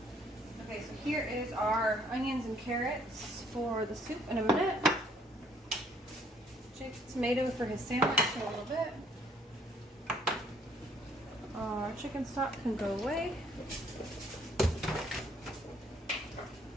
Okay, so here is our onions and carrots for the soup in a minute. Jake's tomato for his sandwich in a little bit. Our chicken stock can go away.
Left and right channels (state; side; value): normal; both; correlation 0.64